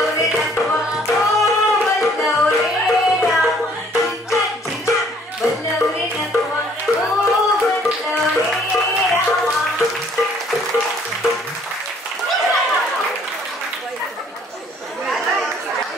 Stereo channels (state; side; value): normal; both; correlation 0.60